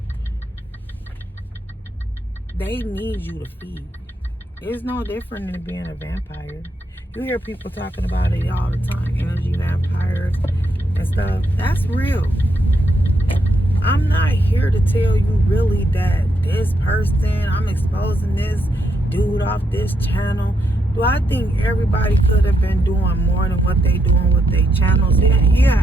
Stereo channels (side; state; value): both; normal; correlation 0.79